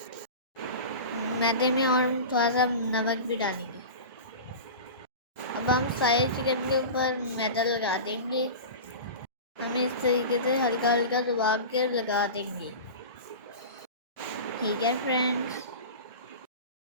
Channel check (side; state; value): both; inverted; correlation -0.31